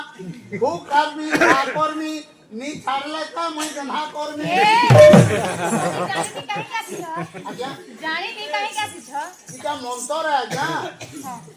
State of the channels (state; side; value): identical; both; correlation 1.00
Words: खूब कर्मी कर्मी नी छाड़ले का मैं गन्हा कर्मी आज्ञा जानी नहीं काहे का सिछ इका मंतर है आज्ञा